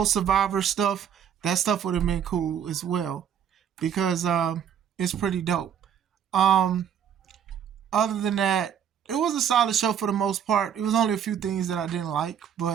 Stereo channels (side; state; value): left; quieter; 8.7 dB